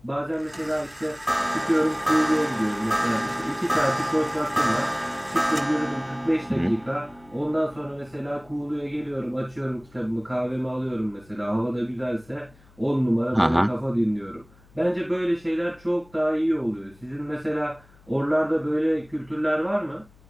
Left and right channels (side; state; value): left; noise; hum, 27 dB below the sound